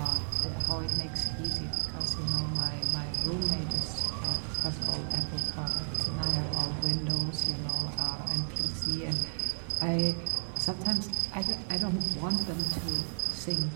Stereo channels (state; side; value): silent; left; 56 dB below the other